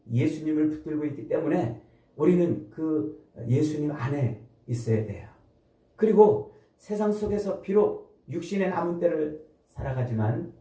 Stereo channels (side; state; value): both; identical; correlation 1.00